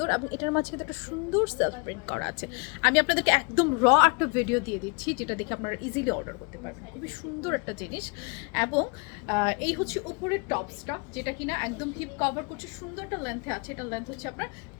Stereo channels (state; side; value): quieter; right; 33.0 dB